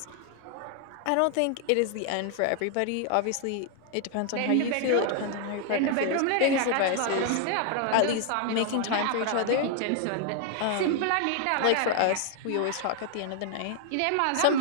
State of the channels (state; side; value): different; both; correlation 0.00